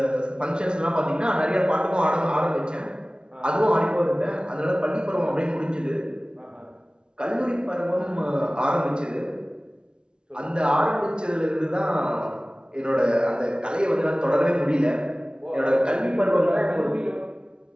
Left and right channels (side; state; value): left; late; 0.054 ms